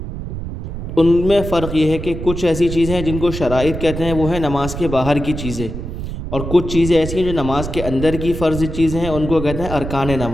ان میں فرق یہ ہے کہ کچھ ایسی چیزیں ہیں جن کو شرائط کہتے ہیں، وہ ہیں نماز کے باہر کی چیزیں، اور کچھ چیزیں ایسی ہیں جو نماز کے اندر کی فرض چیزیں ہیں، ان کو کہتے ہیں ارکان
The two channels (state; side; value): noise; right; rumble, 7 dB below the sound